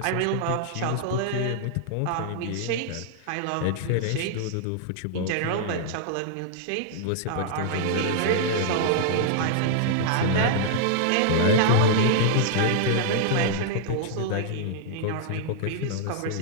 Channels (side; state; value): both; different; correlation -0.01